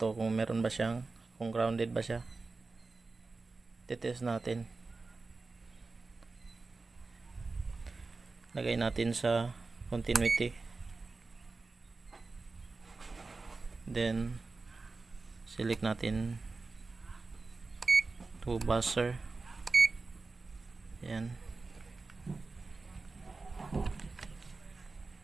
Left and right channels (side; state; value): left; quieter; 3.8 dB